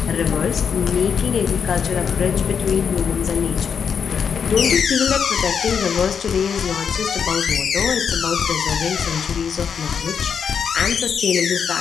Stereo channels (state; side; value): quieter; right; 6.9 dB